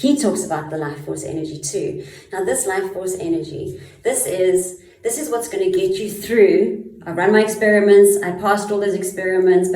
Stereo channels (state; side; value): identical; both; correlation 1.00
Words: talks about the life force energy too. Now this life force energy, this is what's going to get you through. I run my experiments, I passed all those experiments,